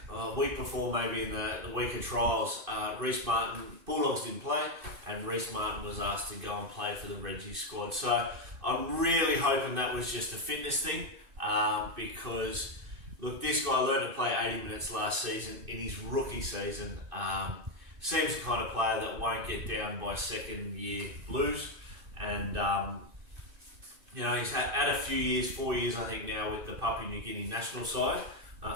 a week before, maybe in the week of trials, Reece Martin, Bulldogs didn't play, and Reece Martin was asked to go and play for the Reggie squad. So I'm really hoping that was just a fitness thing, because, look, this guy learned to play 80 minutes last season in his rookie season. Seems the kind of player that won't get down by second-year blues, and he's had a few years, 4 years I think now, with the Papua New Guinea national side,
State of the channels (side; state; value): left; late; 2.6 ms